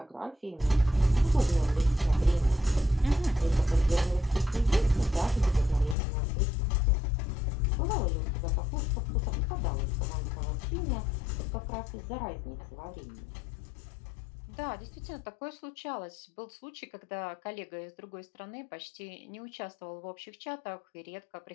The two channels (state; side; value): drops out; right; at 6.0 s